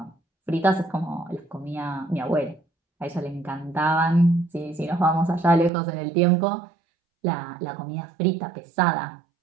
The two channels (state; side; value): drops out; left; at 5.7 s